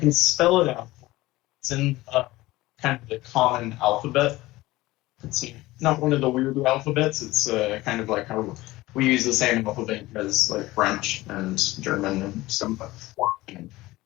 spell it out. It's in kind of the common alphabet. It's not one of the weird alphabets. It's kind of like how we use the same alphabet as like French and German and some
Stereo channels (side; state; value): right; quieter; 18.6 dB